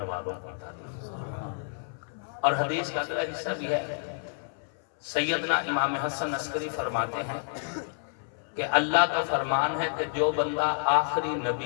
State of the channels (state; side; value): silent; right; 58 dB below the other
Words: والوں کی تعریف۔ اور حدیث کا اگلا حصہ بھی ہے، سیدنا امام حسن عسکری فرماتے ہیں کہ اللہ کا فرمان ہے کہ جو بندہ آخری